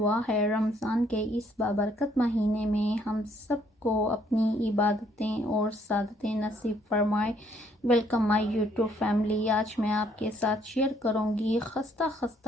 है रमज़ान के इस बाबरकत महीने में हम सबको अपनी इबादतें और सादतें नसीब फरमाए। Welcome my YouTube family. आज मैं आपके साथ शेयर करूंगी खस्ता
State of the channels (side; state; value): both; normal; correlation 0.66